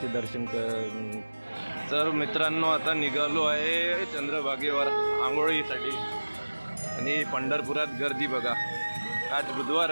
दर्शन तर मित्रांनो आता निघालो आहे चंद्रभागेवर आंघोळीसाठी. आणि पंढरपुरात गर्दी बघा. आज बुधवार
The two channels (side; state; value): both; inverted; correlation -1.00